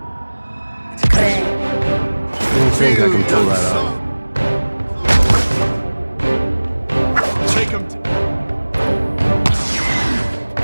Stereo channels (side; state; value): both; inverted; correlation -1.00